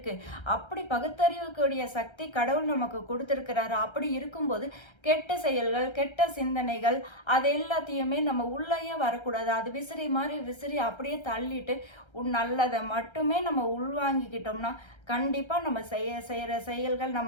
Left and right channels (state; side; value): late; right; 1.3 ms